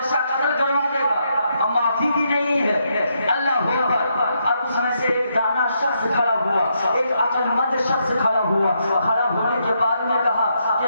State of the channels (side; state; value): both; inverted; correlation -0.78